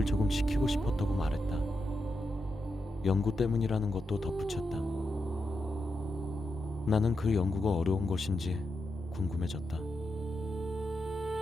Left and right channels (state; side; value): normal; both; correlation 0.86